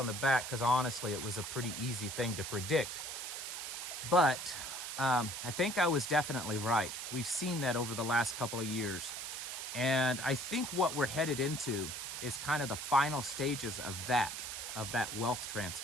the back, because honestly it was a pretty easy thing to predict. But I think I was definitely right. We've seen that over the last couple of years. And I think what we're headed into is kind of the final stages of that wealth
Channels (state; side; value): noise; right; hiss, 6 dB below the sound